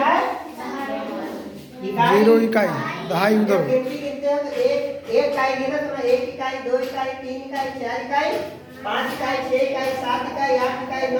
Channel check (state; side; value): identical; both; correlation 1.00